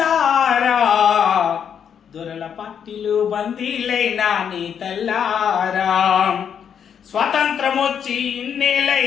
దొరల పట్టిలు బందీలైనా నీ తల్లారా. స్వతంత్రం వచ్చి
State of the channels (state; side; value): quieter; right; 8.0 dB